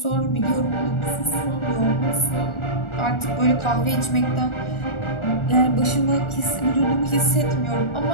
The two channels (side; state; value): right; late; 1.4 ms